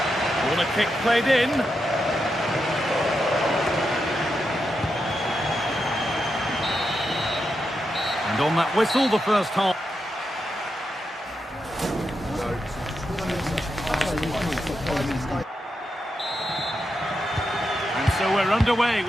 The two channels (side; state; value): both; normal; correlation 0.86